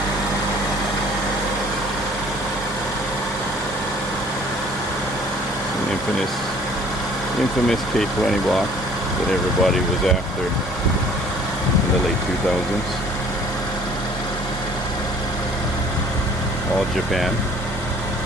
Infamous K20 block that everybody was after in the late 2000s. All Japan.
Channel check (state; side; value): normal; both; correlation 0.54